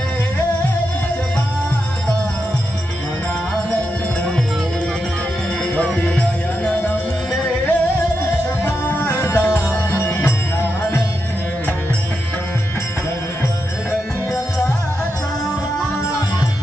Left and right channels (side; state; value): both; normal; correlation 0.86